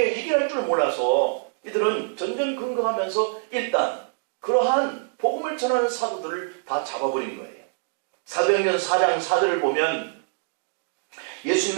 해결할 줄 몰라서 이들은 전전긍긍하면서 일단 그러한 복음을 전하는 사도들을 다 잡아버린 거예요. 사도행전 4장 4절을 보면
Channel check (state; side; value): silent; left; digital silence